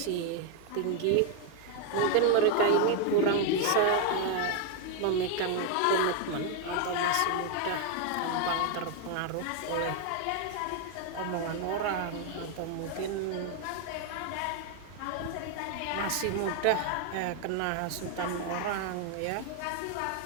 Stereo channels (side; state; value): both; different; correlation 0.01